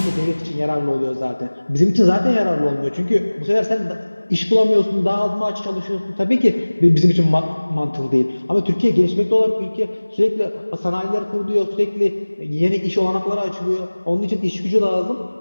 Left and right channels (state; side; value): inverted; both; correlation -1.00